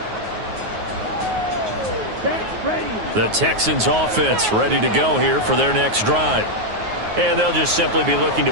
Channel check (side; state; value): left; late; 9.4 ms